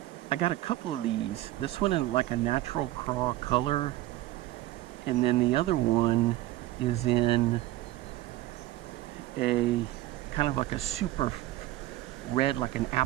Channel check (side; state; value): left; quieter; 16.0 dB